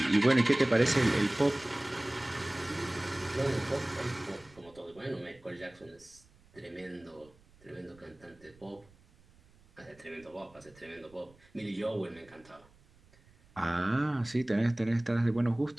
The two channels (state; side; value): noise; right; rumble, 28 dB below the sound